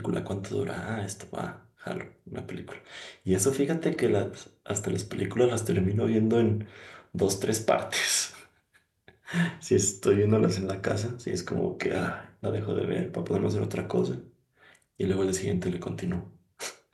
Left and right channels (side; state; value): both; identical; correlation 1.00